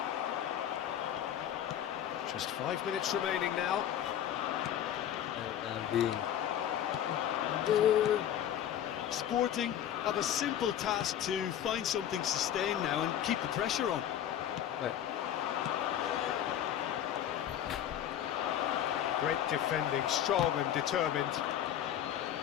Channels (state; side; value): quieter; right; 10.5 dB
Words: Just 5 minutes remaining now. Sporting have a simple task to find something sustained now and keep the pressure on. Great defending, strong and determined.